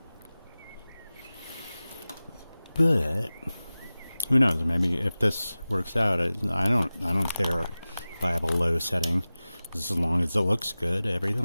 But who knows? Maybe if this works out, I don't care if I have a low setting, just as long as it looks good.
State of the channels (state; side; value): inverted; both; correlation -0.97